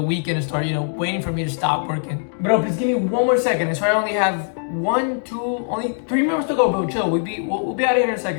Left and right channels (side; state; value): right; silent; digital silence